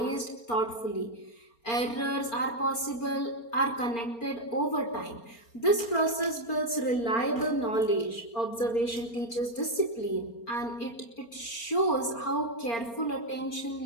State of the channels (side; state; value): right; late; 4.3 ms